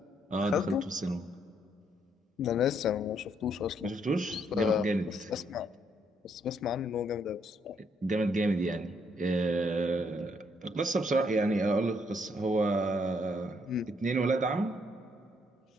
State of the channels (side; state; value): both; normal; correlation 0.72